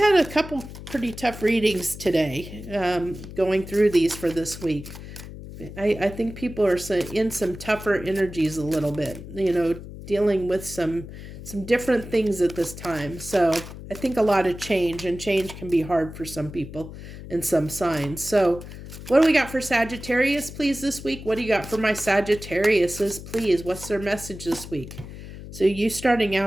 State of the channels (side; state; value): left; noise; hum, 13 dB below the sound